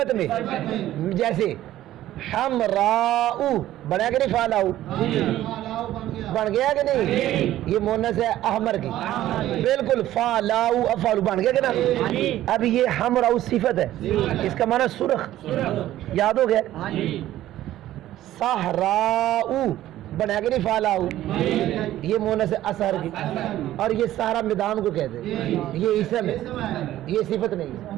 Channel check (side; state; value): left; quieter; 13.8 dB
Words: میں، جیسے حمراؤ بنا کہ نہیں؟ فعلاؤ بن گیا کہ نہیں؟ یہ مونس ہے احمر کی، بالکل. فعلاؤ افعال بن گیا کہ نا؟ اب یہ حمراؤ صفت ہے، اس کا معنی سرخ، یاد ہو گیا؟ صحراؤ بنا کے نہیں؟ فعلاؤ یہ مونس ہے اثر کی، اور یہ سارا میدان کو کہتے ہیں، یہ اسم ہے، یہ صفت نہیں